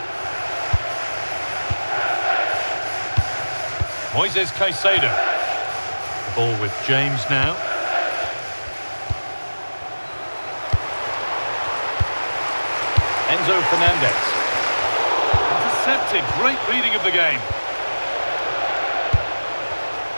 Moises Caicedo. The ball with James now. Enzo Fernandez. Intercepted. Great reading of the game.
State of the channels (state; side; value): inverted; both; correlation -1.00